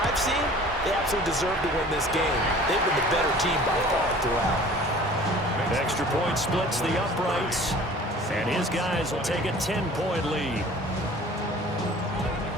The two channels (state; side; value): normal; both; correlation 0.46